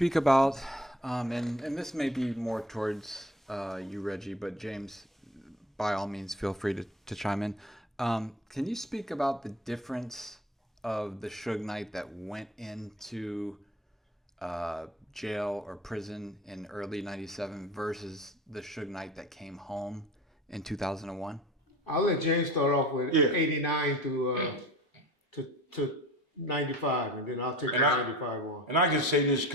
about, and this may be more towards you, Reggie, but James, by all means, feel free to chime in. Can you speak about the difference of the Suge Knight that went into jail or prison in early '97 versus the Suge Knight that came home in 2001? I'll let James start off with Yeah. 89 to 95, and then I'll take the And I 95 one. and I can say this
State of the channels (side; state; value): both; normal; correlation 0.42